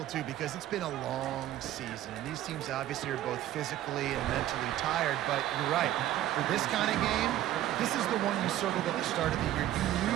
too, because it's been a long season. And these teams obviously are both physically and mentally tired. But you're right. For this kind of game, this is the one you circled at the start of the year. You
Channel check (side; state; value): left; quieter; 13.1 dB